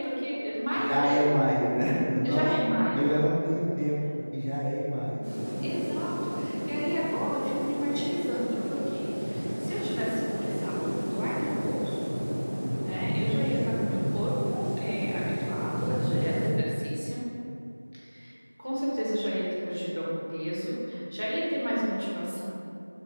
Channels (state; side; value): inverted; both; correlation -1.00